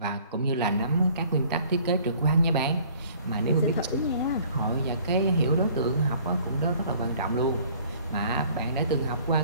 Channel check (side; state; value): both; inverted; correlation -0.55